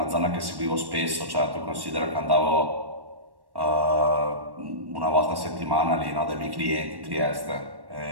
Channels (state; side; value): late; left; 1.1 ms